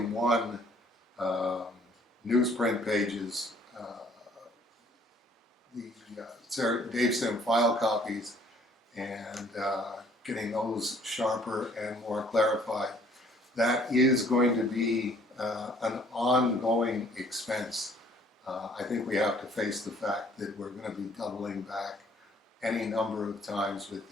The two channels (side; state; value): both; normal; correlation 0.58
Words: 1 newsprint pages, the Dave Sim file copies, and getting those sharper and more clarified. That is going to be an ongoing expense. I think we have to face the fact that we're going to be doubling back any number of times with